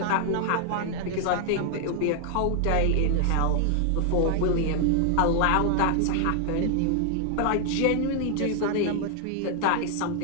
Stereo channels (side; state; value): both; different; correlation 0.00